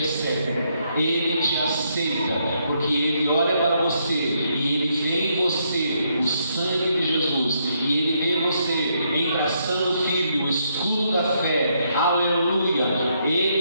Ele te aceita, porque Ele olha para você e Ele vê em você o sangue de Jesus, e Ele vê você embraçando o Filho, o escudo da fé, aleluia.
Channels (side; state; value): both; inverted; correlation -0.75